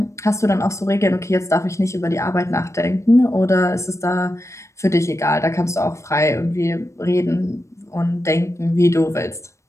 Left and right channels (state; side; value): late; right; 0.14 ms